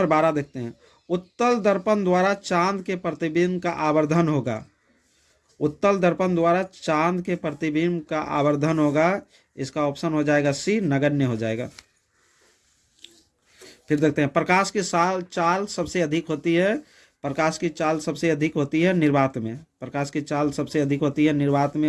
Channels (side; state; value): both; identical; correlation 1.00